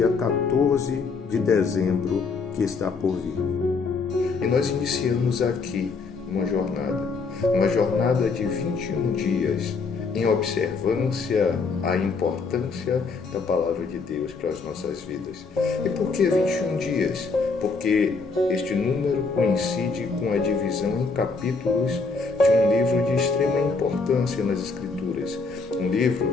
14 de dezembro que está por vir. E nós iniciamos aqui uma jornada de 21 dias em observância à importância da Palavra de Deus para as nossas vidas. E por que 21 dias? Porque este número coincide com a divisão em capítulos de um livro de extrema importância nas Escrituras. Um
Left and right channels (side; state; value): right; quieter; 4.4 dB